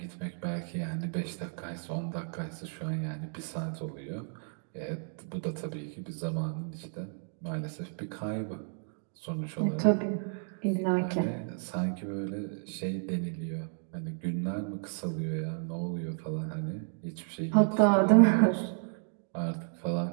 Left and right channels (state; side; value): silent; left; 56 dB below the other